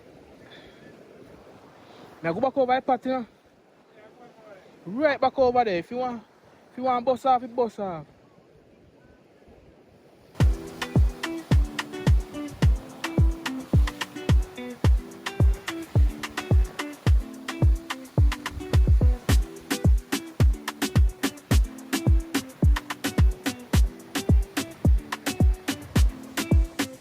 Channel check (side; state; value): both; identical; correlation 1.00